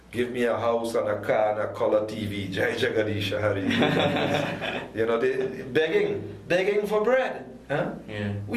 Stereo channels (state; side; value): identical; both; correlation 1.00